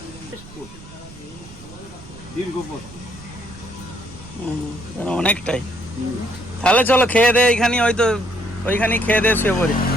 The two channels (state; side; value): noise; right; rumble, 19 dB below the sound